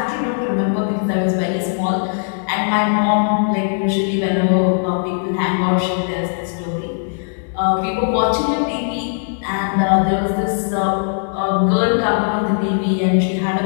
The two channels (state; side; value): silent; right; digital silence